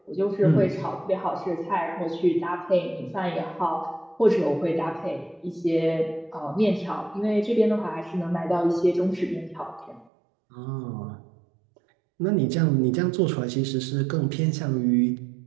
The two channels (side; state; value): left; drops out; at 10.1 s